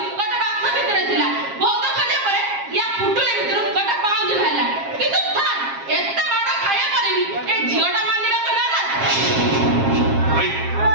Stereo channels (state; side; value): late; left; 7.4 ms